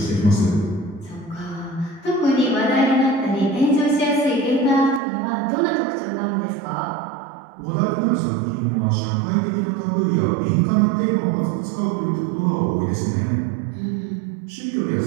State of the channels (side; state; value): left; drops out; at 5.0 s